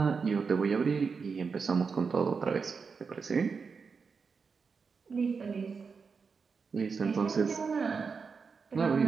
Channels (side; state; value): left; quieter; 5.3 dB